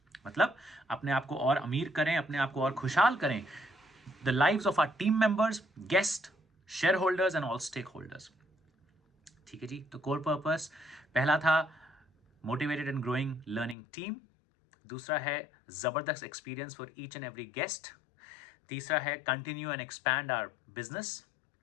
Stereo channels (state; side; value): drops out; right; at 13.8 s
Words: मतलब अपने आप को और अमीर करें, अपने आप को और खुशहाल करें, the lives of our team members, guest, share holders and all stake holders. ठीक है जी, तो कोर पर्पस पहला था motivated and growing learning team, दूसरा है जबरदस्त experience for each and every guest, तीसरा है continue and expand our business,